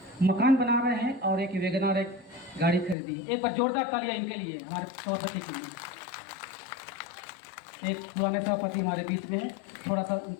मकान बना रहे हैं और एक वैगनआर एक गाड़ी खरीदी। एक बार जोरदार तालियां इनके लिए, हमारे सभापति के लिए। एक पुराने सभापति हमारे बीच में है, थोड़ा सा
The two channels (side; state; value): right; drops out; at 3.0 s